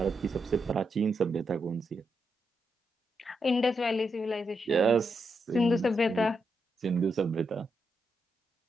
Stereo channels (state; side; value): normal; both; correlation 0.83